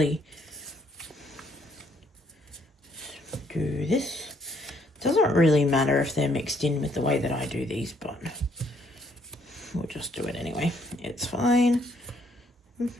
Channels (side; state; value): both; normal; correlation 0.68